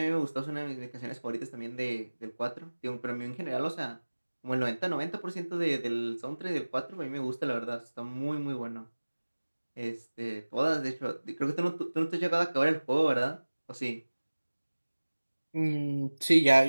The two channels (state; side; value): inverted; both; correlation -1.00